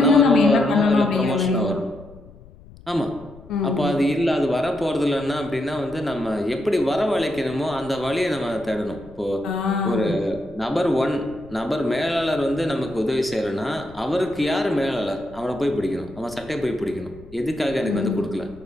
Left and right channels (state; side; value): noise; left; rumble, 21 dB below the sound